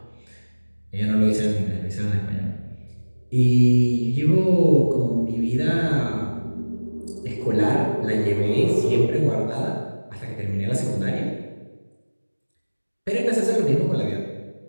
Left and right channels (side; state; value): both; inverted; correlation -1.00